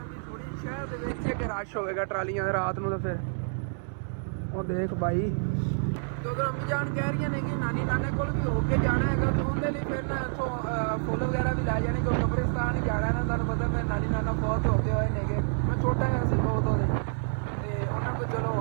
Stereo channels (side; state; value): left; silent; 59 dB below the other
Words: ਥੋੜੀ ਸ਼ਹਿਰ ਦੇ ਵਿੱਚ ਇੱਕ ਰਸ਼ ਹੋਵੇਗਾ ਟਰਾਲੀਆਂ ਦੇ ਰਾਤ ਨੂੰ ਤਾਂ ਫਿਰ ਉਹ ਦੇਖ ਬਾਈ ਤੇ ਉਧਰ ਅੰਮੀ ਜਾਨ ਕਹਿ ਰਹੀਆਂ ਨੇ ਕਿ ਨਾਨੀ ਨਾਨੇ ਕੋਲ ਵੀ ਹੋ ਕੇ ਜਾਣਾ ਹੈਗਾ ਤੇ ਉਹਦੇ ਲਈ ਫਿਰ ਨਾ ਇੱਥੋਂ ਫੁੱਲ ਵਗੈਰਾ ਵੀ ਲੈ ਜਾਣੇ ਕਿਉਂਕਿ ਕਬਰਿਸਤਾਨ ਹੀ ਜਾਣਾ ਨਾ ਤੁਹਾਨੂੰ ਪਤਾ ਮੇਰੇ ਨਾਨੀ ਨਾਨਾ ਬਹੁਤ ਹੋ ਗਏ ਹੋਏ ਨੇਗੇ ਮੈਂ ਛੋਟਾ ਜਿਹਾ ਸੀ ਬਹੁਤ ਉਹਦੇ ਤੇ ਉਹਨਾਂ ਕੋਲ ਚਲੋ